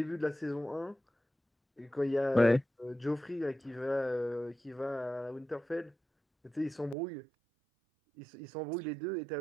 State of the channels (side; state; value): left; drops out; at 7.0 s